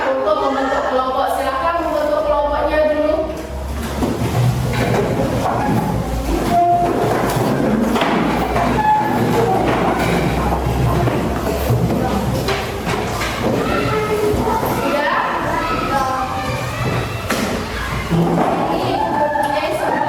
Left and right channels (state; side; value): identical; both; correlation 1.00